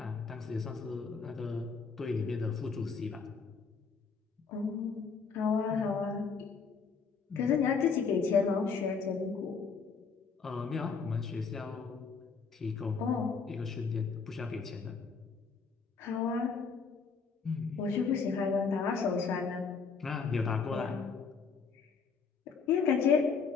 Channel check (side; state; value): right; quieter; 5.3 dB